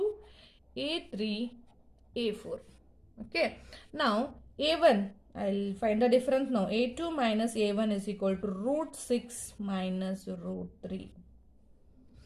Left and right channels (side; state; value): both; identical; correlation 1.00